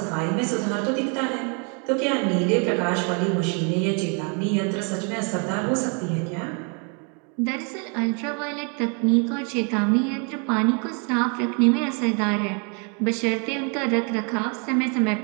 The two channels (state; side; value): quieter; left; 36.8 dB